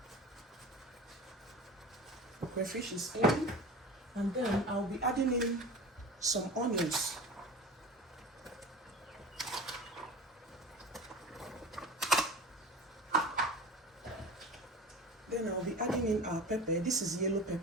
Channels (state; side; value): normal; both; correlation 0.35